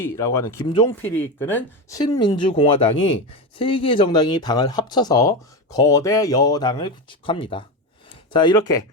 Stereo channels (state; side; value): normal; both; correlation 0.17